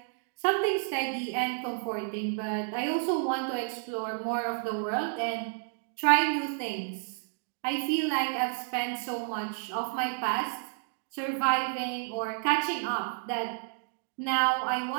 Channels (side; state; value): left; silent; digital silence